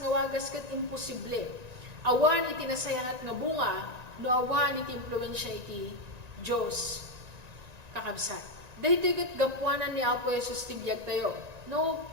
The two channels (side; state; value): left; late; 1.9 ms